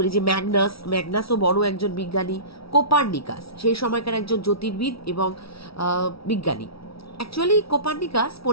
এই যে ম্যাগনাসও বড় একজন বিজ্ঞানী। কোপার্নিকাস, সেই সময়কার একজন জ্যোতির্বিদ এবং বিজ্ঞানী। অ্যাকচুয়ালি কোপার্নিকাস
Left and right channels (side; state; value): right; late; 0.76 ms